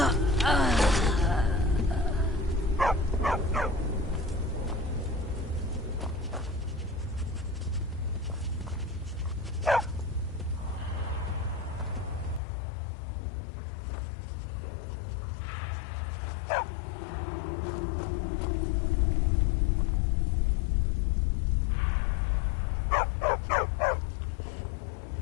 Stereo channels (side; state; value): right; drops out; at 12.4 s